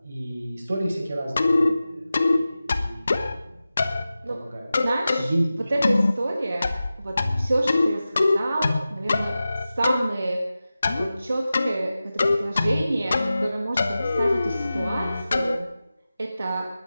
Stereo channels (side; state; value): both; inverted; correlation -0.94